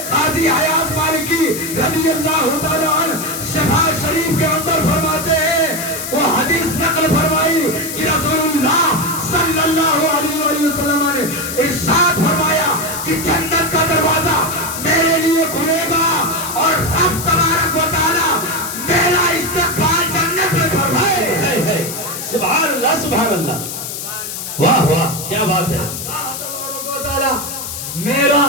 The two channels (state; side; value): noise; left; hiss, 7 dB below the sound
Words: قاضی عیاض مالکی رضی اللہ تعالیٰ عنہ شفا شریف کے اندر فرماتے ہیں، وہ حدیث نقل فرمائی کہ رسول اللہ صلی اللہ علیہ وآلہ وسلم نے ارشاد فرمایا کہ جنت کا دروازہ میرے لیے کھلے گا اور رب تبارک و تعالیٰ میرا استقبال جنت میں فرمائے۔ سبحان اللہ سبحان اللہ، واہ واہ کیا بات ہے۔ اللہ تبارک و تعالیٰ میرا